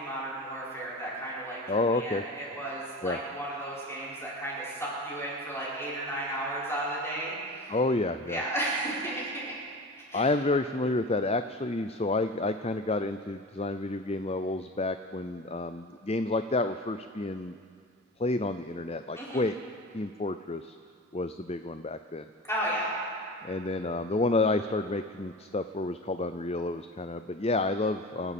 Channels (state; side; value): normal; both; correlation 0.33